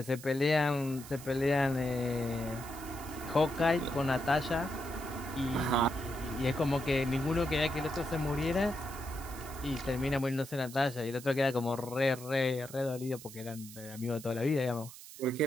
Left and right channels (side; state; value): right; noise; hiss, 15 dB below the sound